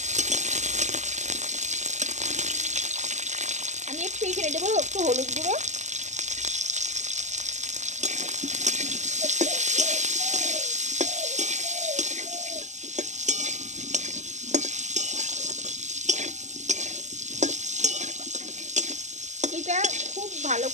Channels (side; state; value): left; late; 0.34 ms